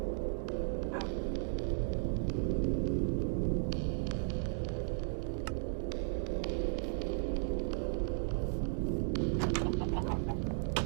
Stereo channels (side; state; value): left; silent; digital silence